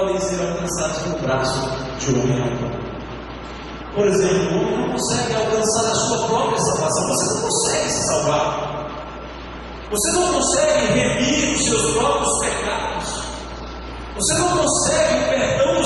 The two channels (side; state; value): both; identical; correlation 1.00